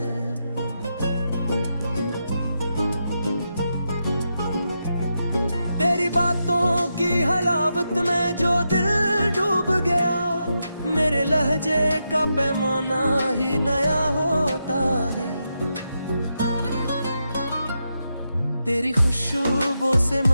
तेरी बातों की हलावत में जो दिल डूब गया, मेरे लहजे का पैमाना ही नया होता है। तेरी खुशबू से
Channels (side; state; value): both; inverted; correlation -0.85